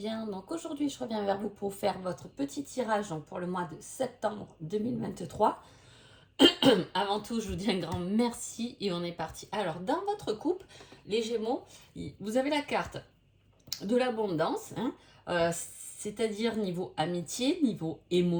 Donc aujourd'hui, je reviens vers vous pour faire votre petit tirage pour le mois de septembre 2023. Avant tout, je vous dis un grand merci et on est parti. Alors, dans votre couple, les Gémeaux, vous avez la carte de l'abondance, c'est-à-dire niveau amitié, niveau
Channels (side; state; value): both; identical; correlation 1.00